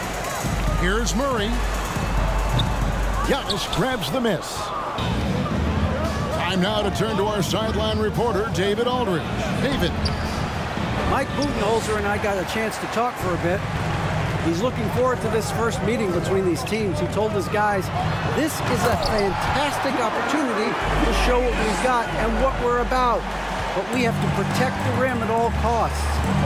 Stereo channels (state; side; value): identical; both; correlation 1.00